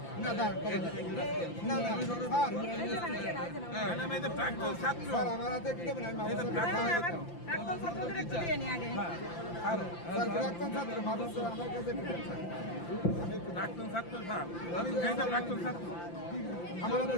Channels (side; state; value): right; late; 5.8 ms